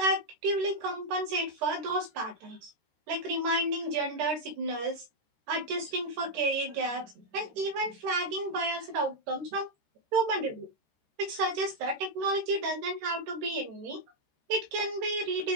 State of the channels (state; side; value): late; left; 13 ms